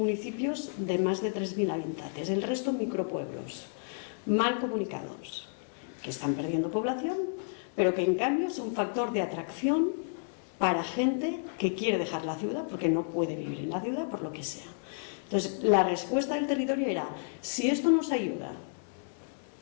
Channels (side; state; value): right; silent; digital silence